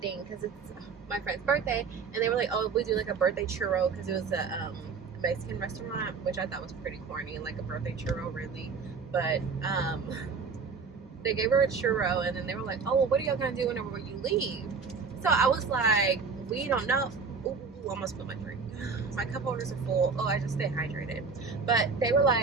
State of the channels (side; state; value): left; quieter; 5.2 dB